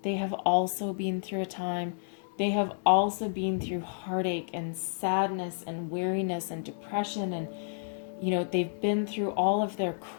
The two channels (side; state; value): right; silent; digital silence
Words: they have also been through a time, they have also been through heartache and sadness and weariness and depression, and, they've been through all of their